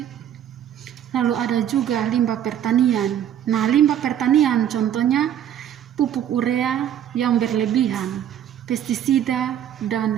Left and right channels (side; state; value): left; quieter; 10.2 dB